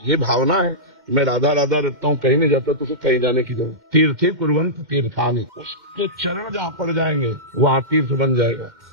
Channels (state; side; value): late; left; 2.1 ms